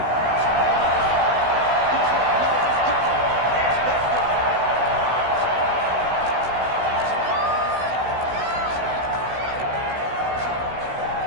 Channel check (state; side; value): late; left; 16 ms